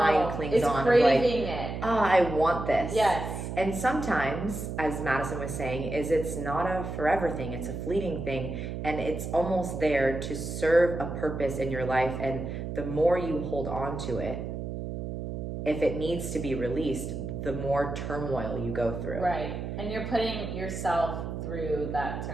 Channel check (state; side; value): noise; right; hum, 5 dB below the sound